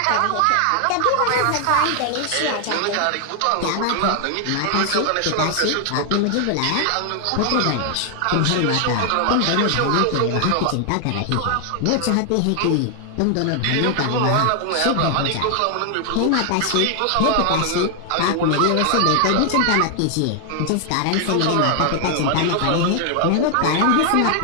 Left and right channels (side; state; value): both; different; correlation 0.00